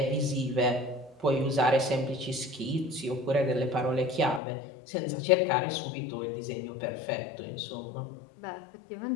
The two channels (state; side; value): drops out; right; at 4.4 s